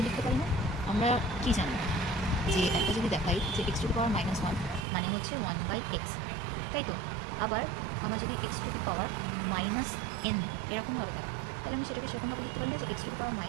লিখতে পারি না, আমরা কি জানি যে একটা যদি দেখাই যে এক্স টু দি পাওয়ার -1 মানে হচ্ছে 1/x, তাই তো? আবার আমরা যদি x to the power -n এরকমভাবে থাকে, তাহলে আমি সেটাকে সেরকমভাবে লিখতে পারি না যে এক্স টু দি পাওয়ার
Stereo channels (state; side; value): drops out; left; at 4.9 s